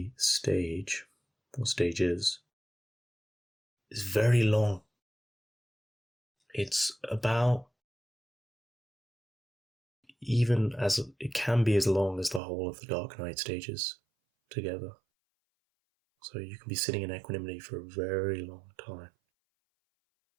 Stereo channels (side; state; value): left; drops out; at 12.4 s